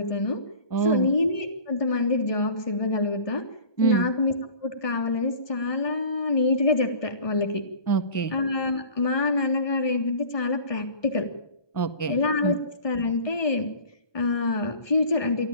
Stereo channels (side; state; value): right; late; 1.2 ms